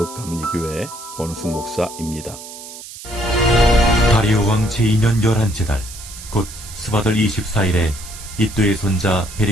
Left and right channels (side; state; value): right; noise; hiss, 14 dB below the sound